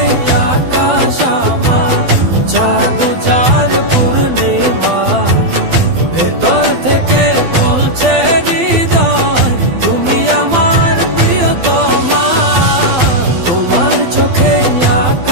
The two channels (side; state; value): left; late; 12 ms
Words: আকাশ আমার, চাঁদ যার পূর্ণিমা। ভেতর থেকে বলছে হৃদয় তুমি আমার প্রিয়তমা। তোমার চোখে